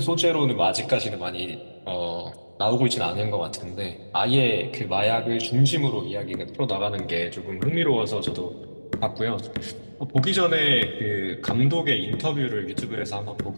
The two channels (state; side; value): inverted; both; correlation -1.00